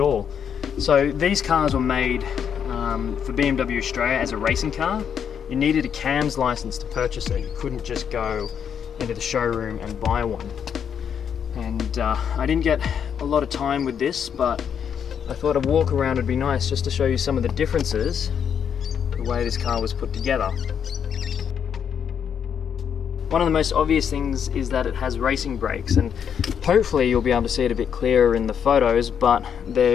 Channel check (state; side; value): quieter; right; 7.9 dB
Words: all. So these cars were made for BMW Australia as a racing car. You needed a CAMS license to purchase it. You couldn't just go into the showroom and buy one. And I didn't get a lot of time with this, but I thought a walk around would be nice just to show you some of the differences, the way this car was put together. One of the most obvious things is that it has racing brakes, and hopefully you'll be able to see it a bit clearer in the photos, but